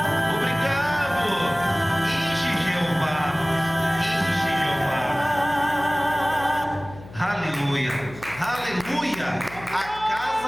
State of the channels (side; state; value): left; noise; hum, 17 dB below the sound